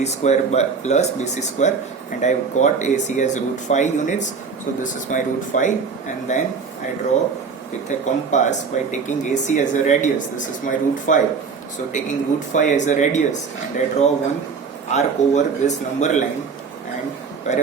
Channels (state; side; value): quieter; left; 5.4 dB